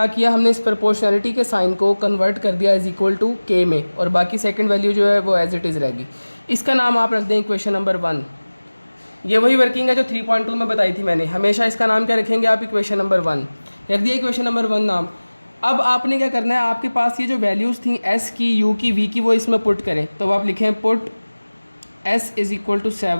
किया, हमने इस प्रोपोर्शनैलिटी के साइन को कन्वर्ट कर दिया इज़ इक्वल टू के में, और बाकी सेकंड वैल्यू जो है वो एज इट इज़ रहेगी। इसका नाम आप रख दें इक्वेशन नंबर 1। ये वही वर्किंग है जो 3.2 में बताई थी मैंने। हमेशा इसका नाम क्या रखेंगे आप, इक्वेशन नंबर 1 रख दिया, इक्वेशन नंबर 1 नाम। अब आपने क्या करना है, आपके पास ये जो वैल्यूज़ थी एस की, यू की, वी की, वो इसमें पुट करें। तो आप लिखें put s is equal to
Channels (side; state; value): both; inverted; correlation -1.00